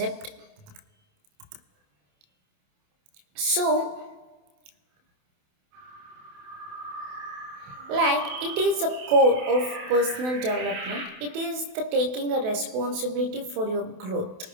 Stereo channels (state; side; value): late; left; 28 ms